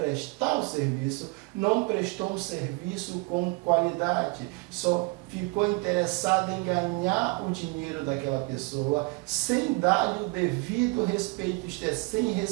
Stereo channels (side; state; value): left; quieter; 27.6 dB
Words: o serviço, não prestou um serviço com qualidade, só ficou interessado em ganhar o dinheiro daquela pessoa, sem dar-lhe o devido respeito, isto é, sem